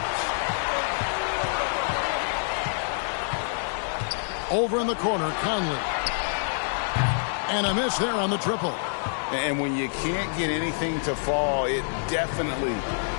Over in the corner, Conley. And a miss there on the triple. And when you can't get anything to fall, it definitely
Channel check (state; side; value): silent; right; digital silence